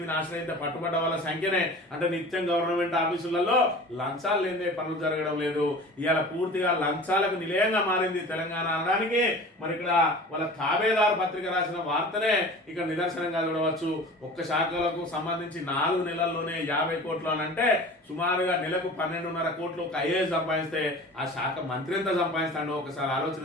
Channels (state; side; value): normal; both; correlation 0.40